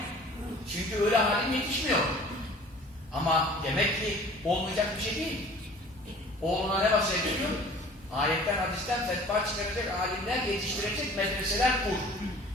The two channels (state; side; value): normal; both; correlation 0.47